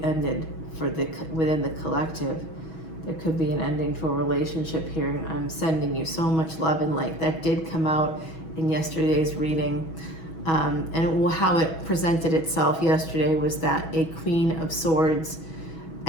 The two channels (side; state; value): right; late; 6.2 ms